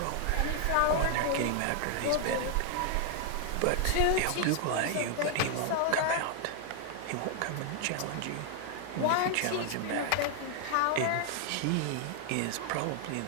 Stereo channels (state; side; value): different; both; correlation 0.00